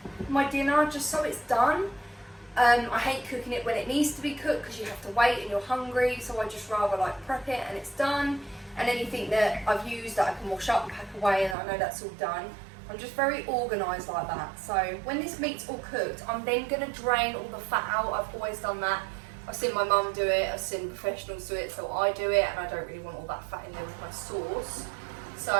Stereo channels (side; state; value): left; drops out; at 11.6 s